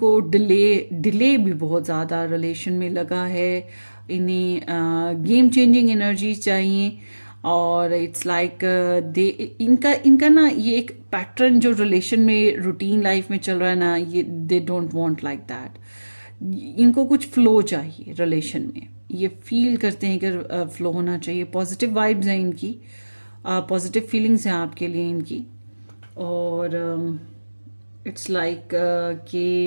डिले भी बहुत ज़्यादा रिलेशन में लगा है। इन्हें गेम चेंजिंग एनर्जी चाहिए, और इट्स लाइक दे इनका ना ये एक पैटर्न जो रिलेशन में, रूटीन लाइफ में चल रहा है ना, ये दे डोंट वांट लाइक दैट। इनको कुछ फ्लो चाहिए रिलेशन में, ये फील करते हैं कि फ्लो होना चाहिए। पॉजिटिव वाइब्स हैं इनकी, पॉजिटिव फीलिंग्स हैं आपके लिए इनकी, और इट्स लाइक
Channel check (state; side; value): inverted; both; correlation -1.00